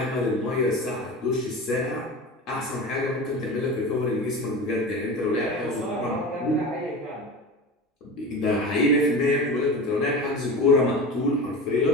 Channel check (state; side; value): normal; both; correlation 0.30